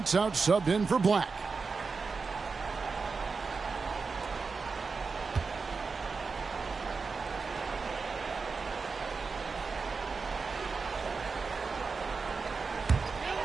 Out subbed in for Black.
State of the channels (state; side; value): quieter; left; 4.7 dB